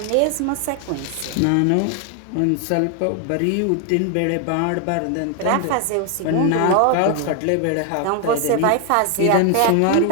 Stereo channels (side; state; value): both; different; correlation 0.01